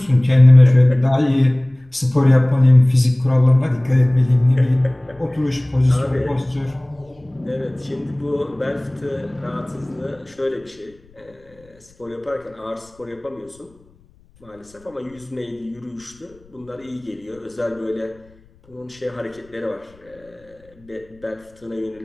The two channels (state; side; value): noise; left; rumble, 30 dB below the sound